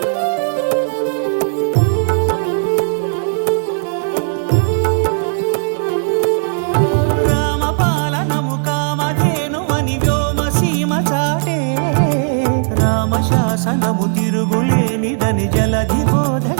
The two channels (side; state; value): left; silent; digital silence